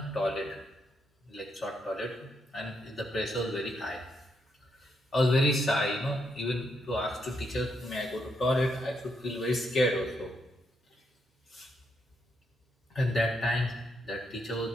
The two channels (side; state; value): both; normal; correlation 0.79